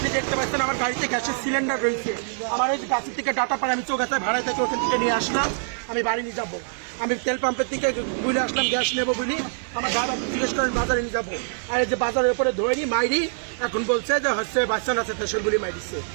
দেখতে পাচ্ছেন আমার গাড়িতে গ্যাসের সিলিন্ডার রয়েছে। আমার ওই গাছের থেকে ডাটা পাড়া আমি চৌগাছায় ভাড়ায় থেকে ওখান থেকে নিয়ে আসলাম। আমি বাড়ি নিয়ে যাবো। আমি তেল পাম্পের থেকে বুঝে আসলাম গ্যাস নেবো বলি। আমার ড্রাইভার জিজ্ঞেস করেন বাজারে নিয়ে যাবো। আর এই যে বাজারের উপরে ধরি মাইরি, এখন বলছে যে হচ্ছে বাচ্চা না আছে সেগুলি মাইরিছে।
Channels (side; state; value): left; silent; digital silence